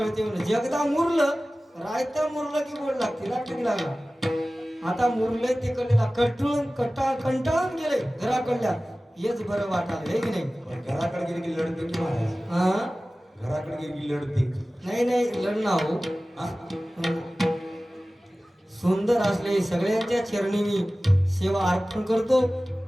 म्हणलं. जगदा मुरलं, रायता मुरलं की बोल लागते, लागते लागला. आता मुरलंय ते कडलेला कंटाळून गेले घराकडल्या, हेच बरं वाटायला, हे की नाही? घराकडे गेली की लढते की महाराज? घराकडे गेली की लढते? नाही लढणं हो. सुंदर असले सगळ्यांच्या चरणी मी सेवा अर्पण करतो.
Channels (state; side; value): normal; both; correlation 0.97